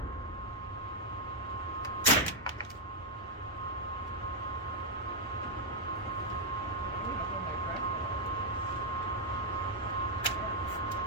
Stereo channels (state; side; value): normal; both; correlation -0.03